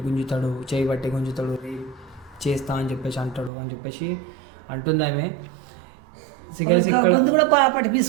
గుంజుతాడు, చేయి పట్టి గుంజుతాడు, చేస్తా అని చెప్పేసి అంటాడు అని చెప్పేసి అంటుంది ఆమె. సిగరెట్స్ ఇక్కడ గొంతు కూడా పట్టి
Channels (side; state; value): left; drops out; at 3.5 s